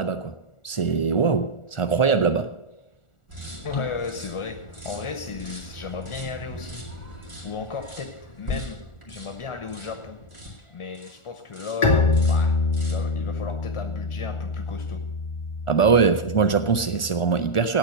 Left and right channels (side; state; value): right; late; 1.4 ms